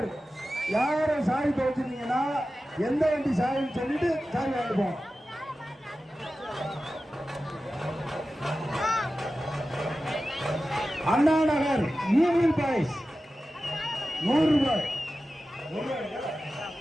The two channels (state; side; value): normal; both; correlation 0.94